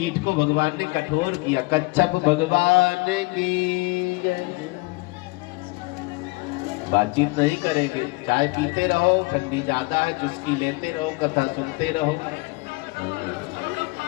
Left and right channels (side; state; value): right; quieter; 25.5 dB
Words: को भगवान ने कठोर किया। कच्छप भगवान की जय। बातचीत नहीं करेंगे, चाय पीते रहो, ठंडी ज्यादा है, चुस्की लेते रहो, कथा सुनते रहो।